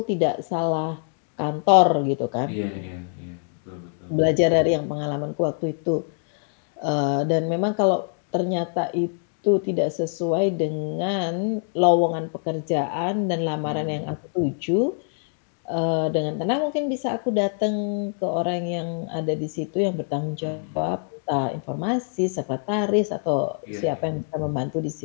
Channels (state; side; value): silent; right; 62 dB below the other